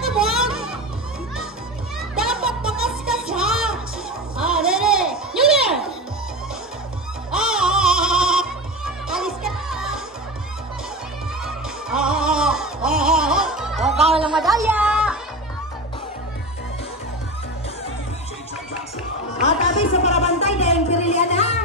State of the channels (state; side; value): normal; both; correlation 0.24